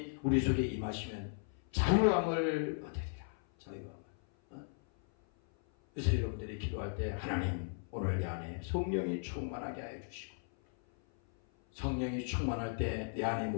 우리 속에 임하시면 자유함을 얻으리라. 자유함을. 그래서 여러분들이 기도할 때 하나님 오늘 내 안에 성령이 충만하게 하여 주시고 성령이 충만할 때 내 안에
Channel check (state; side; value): silent; right; 54 dB below the other